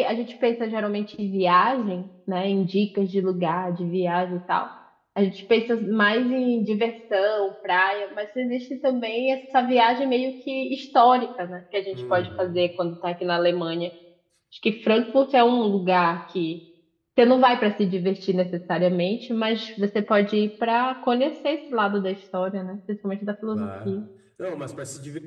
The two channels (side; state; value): both; identical; correlation 1.00